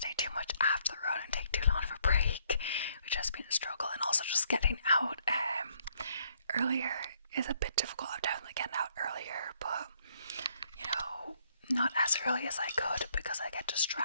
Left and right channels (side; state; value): both; inverted; correlation -0.69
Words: too much after the run and take too long of a break, which has been a struggle. And also just getting out earlier is a bit difficult. I'm definitely getting out earlier, but you know, not as early as I could because I get